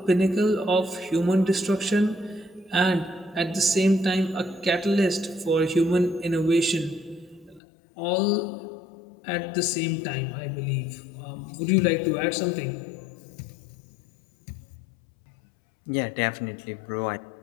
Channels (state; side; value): drops out; right; at 7.6 s